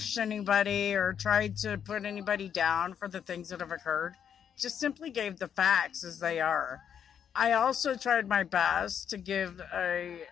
anybody or tried to put anybody down for the things that have occurred. Just simply gave the facts as they are. I also tried my best to give a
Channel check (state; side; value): quieter; right; 8.4 dB